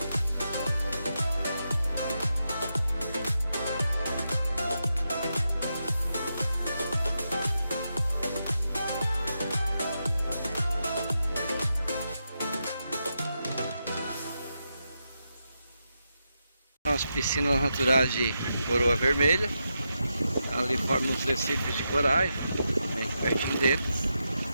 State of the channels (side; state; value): both; inverted; correlation -0.86